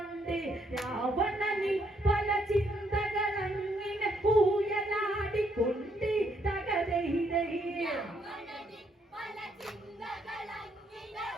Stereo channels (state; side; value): normal; both; correlation 0.72